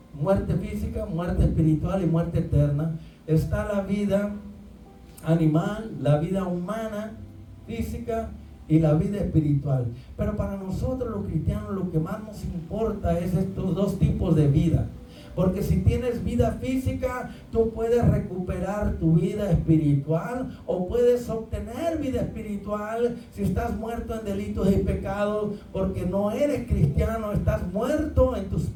muerte física, muerte espiritual y muerte eterna. Está la vida animal, la vida humana, física, y la vida espiritual. Pero para nosotros los cristianos lo que más nos importa es estos 2 tipos de vida. Porque si tienes vida física, tú puedes recuperar tu vida espiritual, o puedes obtener vida espiritual si estás muerto en delitos y pecados, porque no eres cristiano, estás muerto en tus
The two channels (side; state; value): both; identical; correlation 1.00